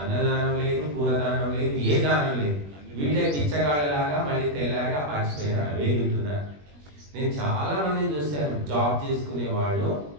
లేదు, కూరదానం లేదు, ఏ దానం లేదు. వీళ్ళే పిచ్చగాళ్ళలాగా మళ్ళీ తెల్లాగా పాచిపోయినారు, వేగుంటున్నారు. నేను చాలా మందిని చూశాను, జాబ్ చేసుకునే వాళ్ళు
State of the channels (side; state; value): left; late; 21 ms